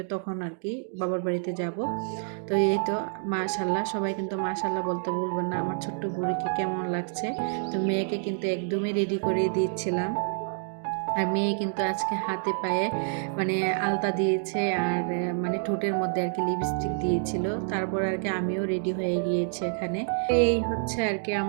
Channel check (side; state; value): left; silent; 59 dB below the other